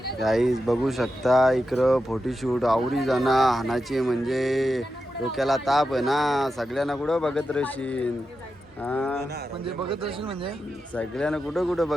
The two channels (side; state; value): both; normal; correlation 0.89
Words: गाईज बघू शकता इकडं फोटोशूट आवरी जाणं हानाची म्हणजे डोक्याला ताप आहे ना. सगळ्यांना कुठं बघत राहशील? म्हणजे बघत असेल म्हणजे सगळ्यांना कुठं कुठं